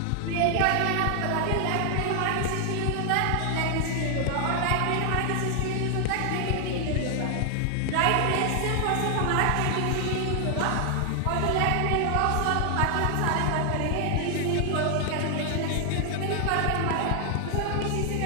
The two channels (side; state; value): both; different; correlation 0.00